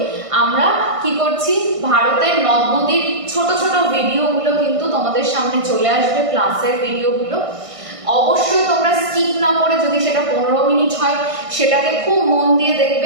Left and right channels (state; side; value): late; left; 1.5 ms